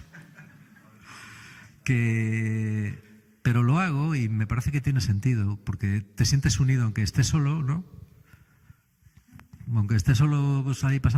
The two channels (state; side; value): identical; both; correlation 1.00